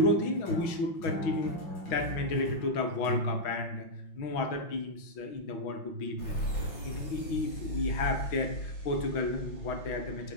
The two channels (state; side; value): late; right; 5.7 ms